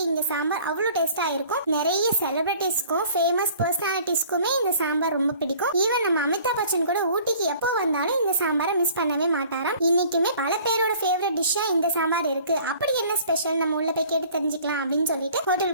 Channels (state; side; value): inverted; both; correlation -0.51